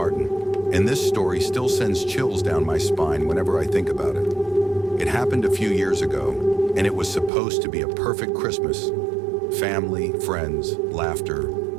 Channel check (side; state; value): left; drops out; at 7.3 s